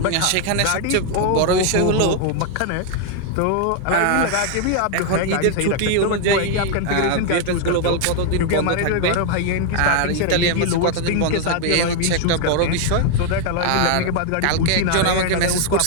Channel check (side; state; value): both; different; correlation 0.00